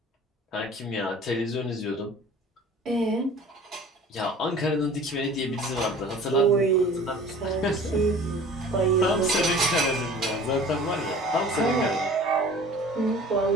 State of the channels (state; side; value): normal; both; correlation 0.45